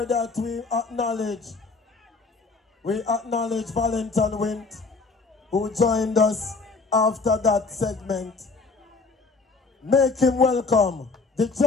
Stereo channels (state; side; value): quieter; right; 4.1 dB